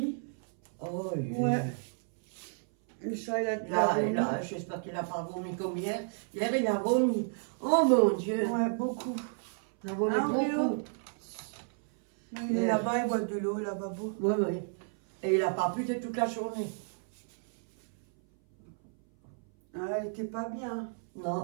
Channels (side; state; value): left; silent; 57 dB below the other